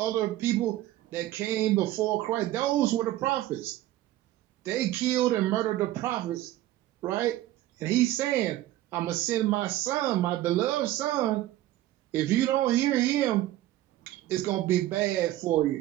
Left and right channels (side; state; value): left; quieter; 14.9 dB